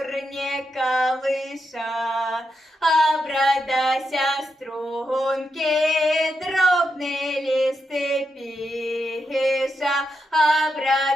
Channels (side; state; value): both; normal; correlation 0.85